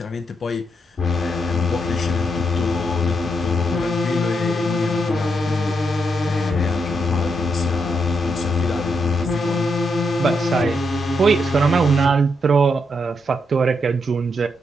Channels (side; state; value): both; normal; correlation 0.80